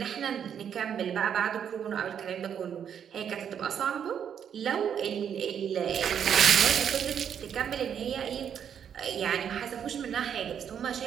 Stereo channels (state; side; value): quieter; left; 8.4 dB